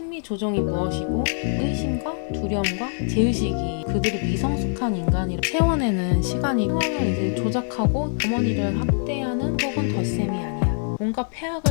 조정이 무엇이고 의심과 두려움과 제의식이 그들이 미성숙한 인간이라 채워내는 시간이 상황을 이제 조작하고 어머니를 학대하는 혹은 덧셈이 아니야. 뭔가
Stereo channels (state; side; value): silent; right; digital silence